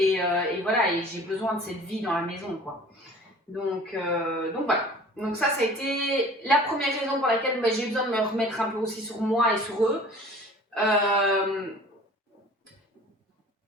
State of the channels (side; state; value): both; normal; correlation 0.46